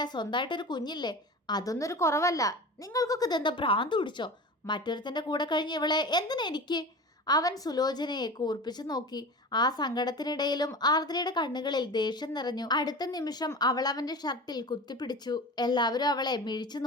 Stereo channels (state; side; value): normal; both; correlation 0.33